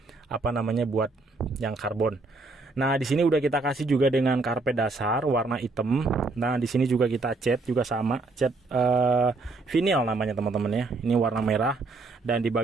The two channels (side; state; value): left; quieter; 3.6 dB